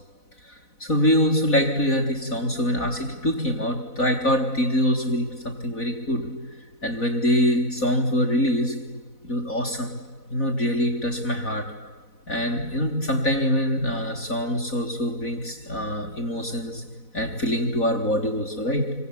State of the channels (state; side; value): late; right; 4.0 ms